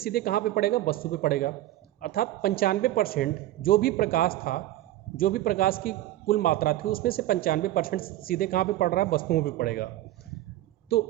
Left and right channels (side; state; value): left; quieter; 14.8 dB